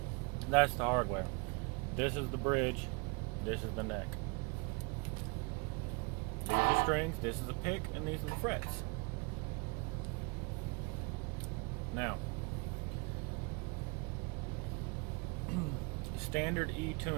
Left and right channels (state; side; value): quieter; left; 30.0 dB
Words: that's the hardware. This is the bridge. This is the neck. These are strings, this is a pick, and these are the frets. Now, standard E